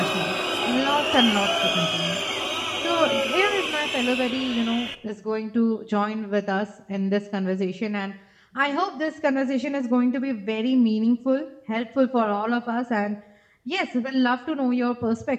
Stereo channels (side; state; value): both; identical; correlation 1.00